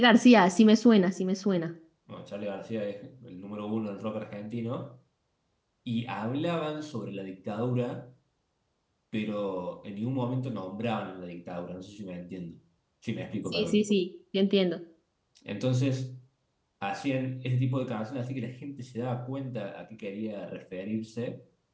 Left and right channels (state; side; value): identical; both; correlation 1.00